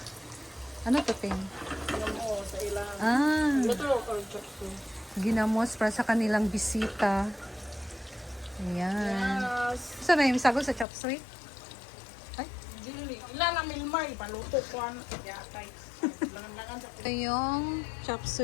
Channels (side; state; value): right; drops out; at 10.9 s